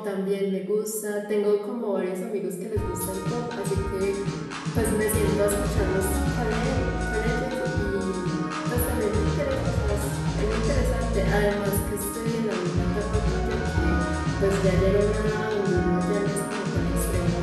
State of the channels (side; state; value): both; identical; correlation 1.00